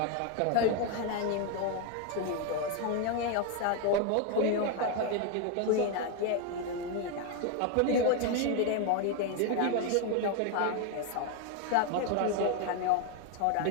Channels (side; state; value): both; different; correlation 0.01